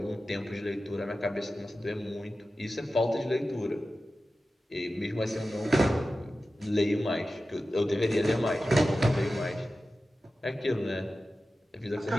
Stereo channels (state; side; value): normal; both; correlation 0.94